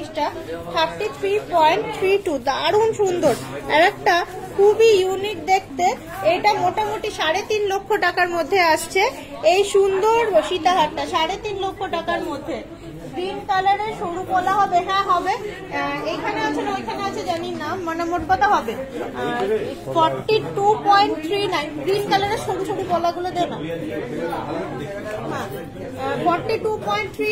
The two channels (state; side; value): identical; both; correlation 1.00